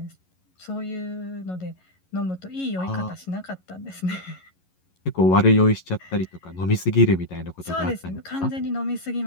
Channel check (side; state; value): right; late; 11 ms